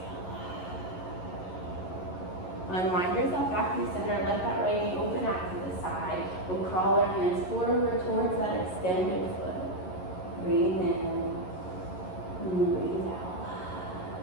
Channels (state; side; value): late; right; 11 ms